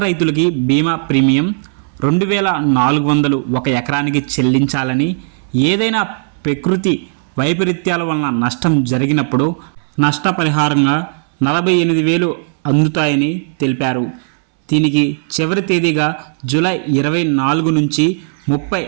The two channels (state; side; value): silent; left; 67 dB below the other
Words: రైతులకి బీమా ప్రీమియం 2400 ఒక ఎకరానికి చెల్లించాలని, ఏదైనా ప్రకృతి వైపరీత్యాల వలన నష్టం జరిగినప్పుడు నష్టపరిహారంగా 48,000 అందుతాయని తెలిపారు. దీనికి చివరి తేదీగా జూలై 24 నుంచి